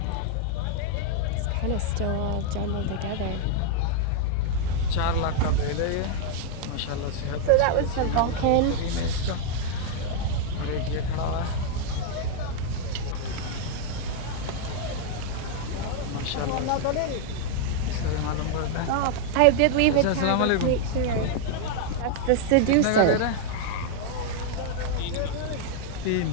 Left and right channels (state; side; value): different; both; correlation 0.00